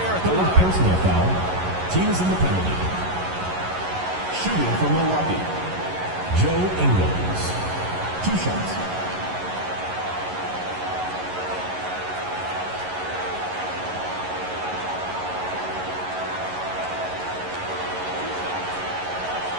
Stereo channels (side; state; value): left; late; 11 ms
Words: at the line. personal foul. Team is in the penalty. Shooting for Milwaukee. Joe Ingles. 2 shots.